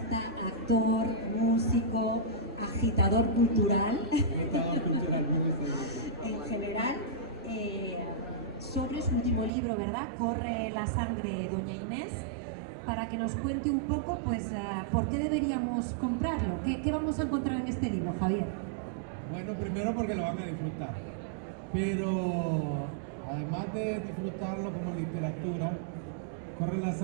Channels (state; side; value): drops out; left; at 9.5 s